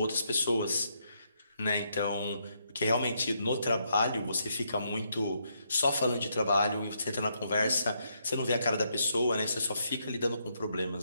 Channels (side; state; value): both; inverted; correlation -0.77